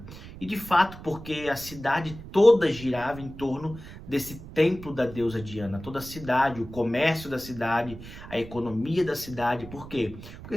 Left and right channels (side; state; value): right; noise; rumble, 14 dB below the sound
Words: E de fato, porque a cidade toda girava em torno desse templo da deusa Diana. Toda a cidade, o comércio da cidade, a economia da cidade. Por quê? Porque